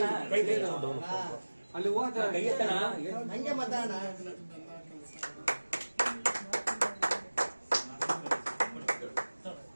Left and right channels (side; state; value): both; inverted; correlation -1.00